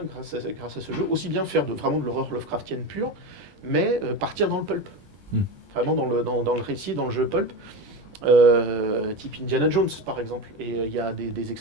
grâce à ce jeu aussi bien faire vraiment de l'horreur Lovecraftienne pure, mais partir dans le pulp, vraiment dans le récit, dans le jeu pulp. Type Indiana Jones par exemple, et il y a des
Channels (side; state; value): left; late; 21 ms